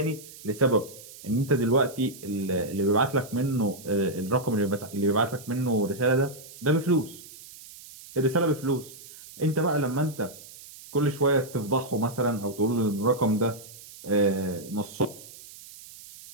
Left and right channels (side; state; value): right; noise; hiss, 18 dB below the sound